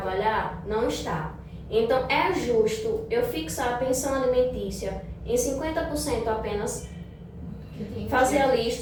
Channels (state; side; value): identical; both; correlation 1.00